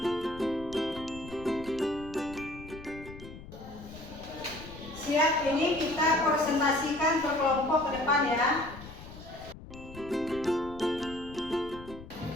Siap, ini kita presentasikan per kelompok ke depan ya.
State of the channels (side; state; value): left; noise; rumble, 15 dB below the sound